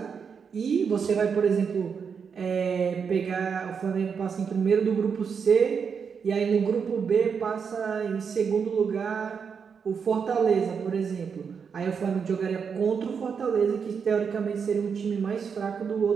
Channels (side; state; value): left; quieter; 6.3 dB